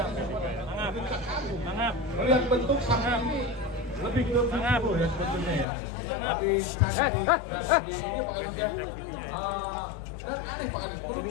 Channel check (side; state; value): right; drops out; at 5.7 s